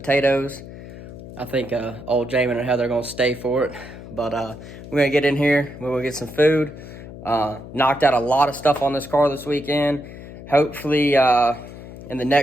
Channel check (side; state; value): left; noise; hum, 14 dB below the sound